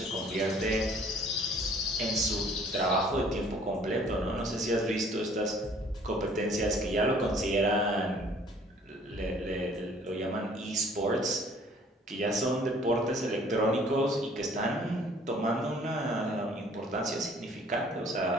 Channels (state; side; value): normal; both; correlation 0.56